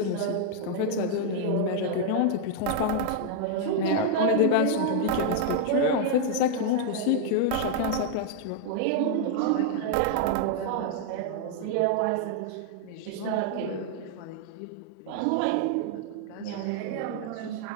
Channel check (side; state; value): both; different; correlation -0.01